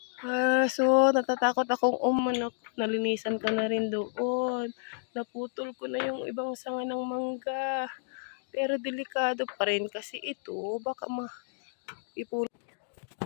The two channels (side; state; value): right; silent; digital silence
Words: So, natatakot akong umanak. Nalinisan ko na rin doon. Naputol ko na yung ibang sanga ng mangga. Pero delikado pa rin kasi ito, baka ipulot.